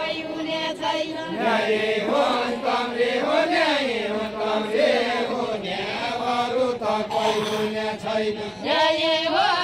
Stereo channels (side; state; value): both; identical; correlation 1.00